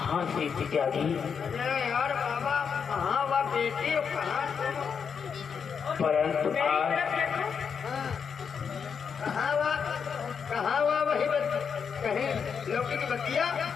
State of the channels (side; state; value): right; quieter; 6.6 dB